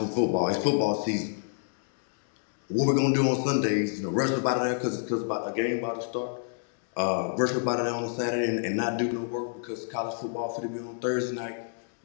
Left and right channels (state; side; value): silent; right; digital silence